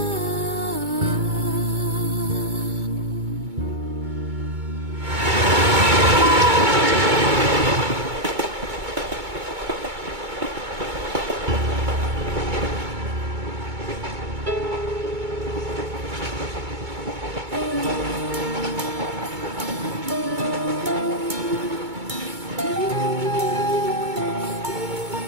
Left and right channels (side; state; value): left; late; 2.2 ms